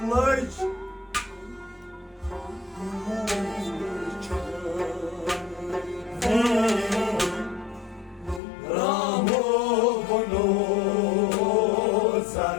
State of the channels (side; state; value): right; drops out; at 8.4 s